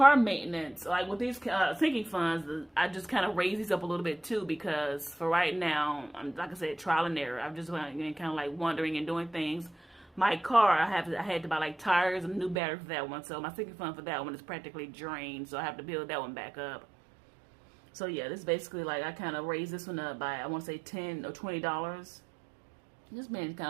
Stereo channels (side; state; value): left; drops out; at 12.6 s